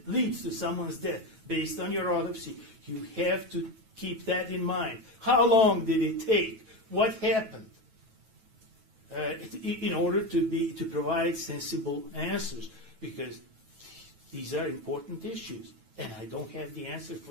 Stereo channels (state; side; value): late; left; 9.2 ms